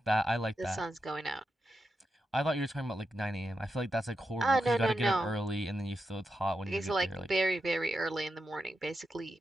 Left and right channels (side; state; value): both; normal; correlation 0.87